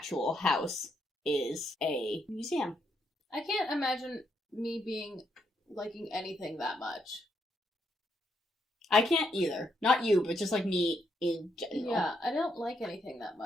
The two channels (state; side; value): normal; both; correlation 0.77